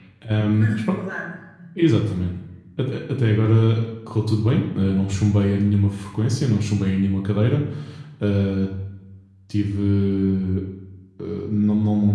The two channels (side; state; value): both; identical; correlation 1.00